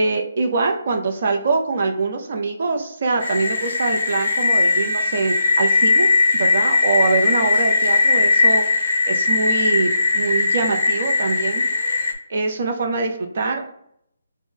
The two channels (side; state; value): both; inverted; correlation -0.81